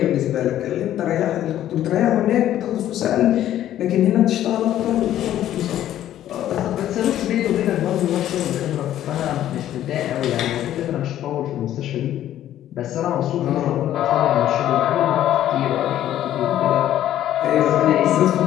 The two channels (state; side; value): quieter; right; 12.2 dB